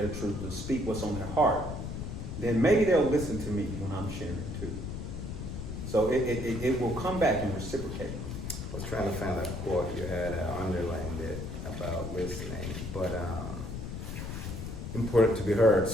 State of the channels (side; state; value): left; noise; rumble, 6 dB below the sound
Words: truth, to speak what's on their heart, then maybe they'll listen to me when I'm sharing too. So it will come back and reciprocate. I was trying to find a quote you had underlined it about listening, but important to be heard.